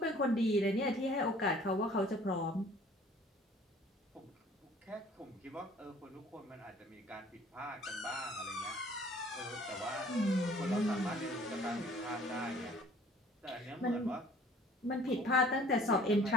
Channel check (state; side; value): normal; both; correlation 0.53